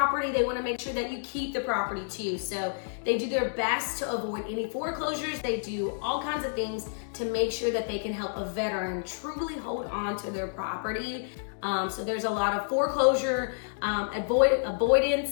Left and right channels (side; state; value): right; silent; digital silence